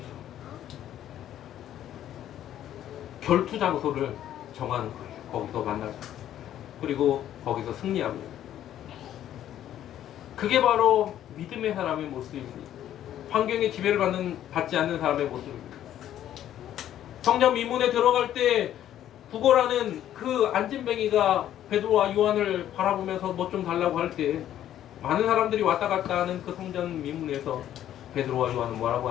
결투 장소를 정하는 거예요. 거기서 만나자. 그리고 거기서 승리합니다. 그게 바로 믿음의 사람의 모습입니다. 환경의 지배를 받지 않는 사람의 모습입니다. 성전 미문에 들어갈 때 구걸하는 그 안진뱅이가 베드로와 요한을 바라보면서 뭐 좀 달라고 할 때 많은 사람들이 왔다 갔다 하는 그 성전 미문에서 베드로와 요한은 뭐라고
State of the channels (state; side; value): quieter; right; 11.5 dB